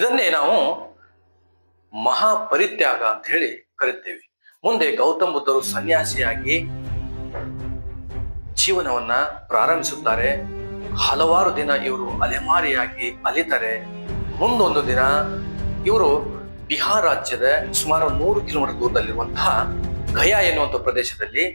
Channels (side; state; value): both; inverted; correlation -1.00